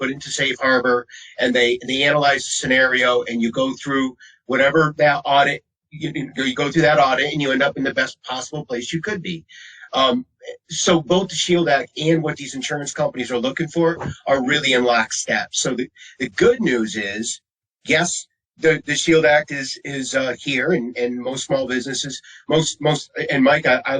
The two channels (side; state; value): both; identical; correlation 1.00